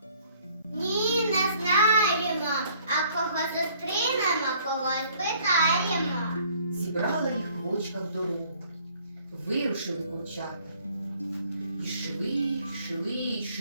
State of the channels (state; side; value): inverted; both; correlation -0.59